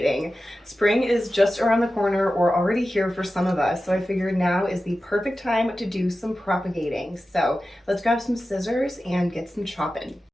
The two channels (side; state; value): both; normal; correlation 0.94